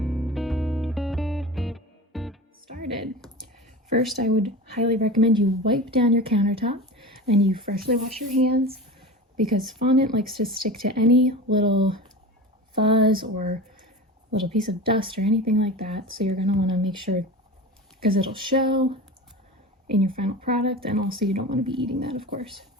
First, I would highly recommend you wipe down your countertop and you freshly wash your hands because fondant likes to stick to any little fuzz or little piece of dust or anything like that. So you're going to want to make sure because it'll show in your final product, and also you don't want to be eating that, of course.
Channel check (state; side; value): normal; both; correlation 0.31